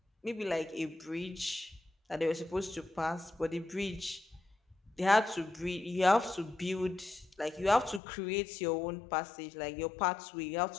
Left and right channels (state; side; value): drops out; right; at 8.0 s